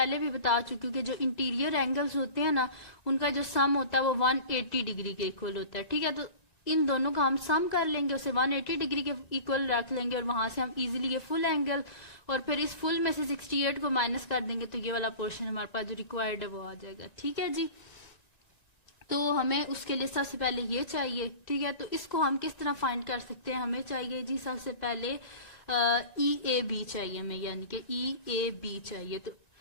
भी बता चुके हैं कि जो इंटीरियर एंगल्स होते हैं ना उनका जो सम होता है वो 180 डिग्री के इक्वल होता है। ठीक है, तो इन दोनों का हम सम कर लेंगे, उसे 180 डिग्री के इक्वल रख लेंगे और वहां से हम इजीली ये फुल एंगल, और फिर इस फुल में से 68 को माइनस कर देंगे तो ये वाला पोर्शन हमारे पास जो रिक्वायर्ड है वो आ जाएगा। ठीक है जी, तो हमें उसके लिए सबसे पहले ये चाहिए। ठीक है, तो इसको हम किस तरह फाइंड कर सकते हैं, हमें चाहिए जी सबसे पहले ई ए बी चाहिए हमें, यानी कि ई ए बी चाहिए। तो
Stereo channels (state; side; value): late; right; 1.9 ms